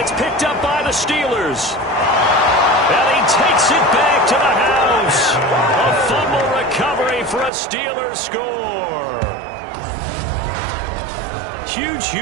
picked up by the Steelers. And he takes it back to the house. A fumble recovery for a Steelers score. Huge,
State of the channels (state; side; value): drops out; left; at 7.5 s